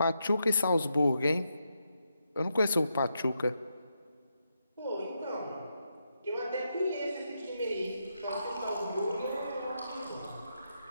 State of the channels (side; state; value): both; inverted; correlation -0.83